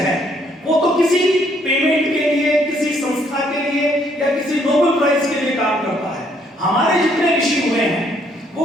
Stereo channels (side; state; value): both; normal; correlation 0.68